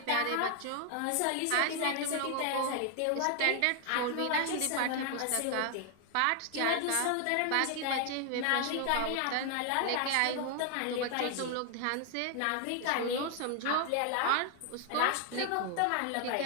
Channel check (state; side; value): different; both; correlation 0.00